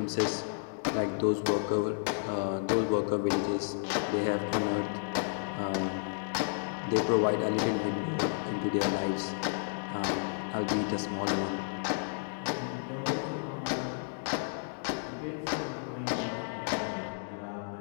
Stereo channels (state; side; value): silent; right; digital silence